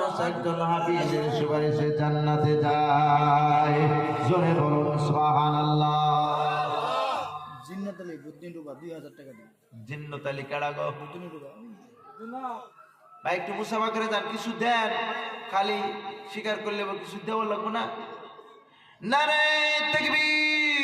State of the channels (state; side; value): identical; both; correlation 1.00